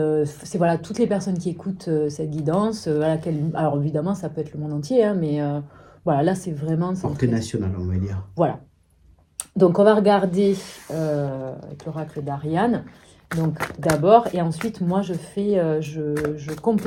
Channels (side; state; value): both; identical; correlation 1.00